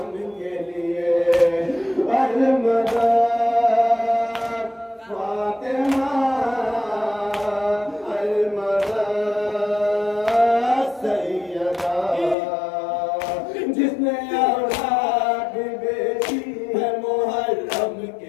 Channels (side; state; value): right; drops out; at 12.4 s